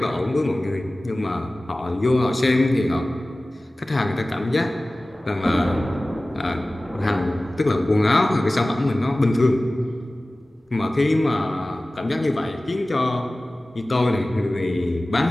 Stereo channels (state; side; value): normal; both; correlation 0.97